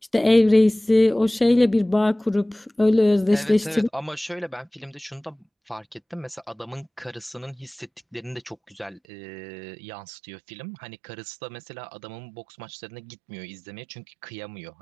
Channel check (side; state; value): left; drops out; at 9.0 s